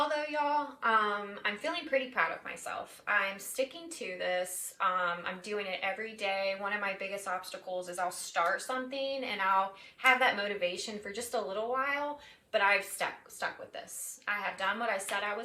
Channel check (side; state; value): both; identical; correlation 1.00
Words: though, y'all, I'm feeling pretty proud of myself. I'm sticking to this. I'm doing it every day. One of my biggest obstacles is I'll start something and I'll have that motivation for just a little while, but I've stuck with this. I have done what I said I